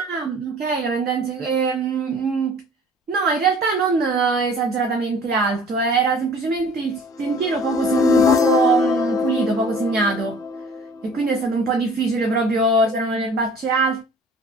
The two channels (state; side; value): normal; both; correlation 0.48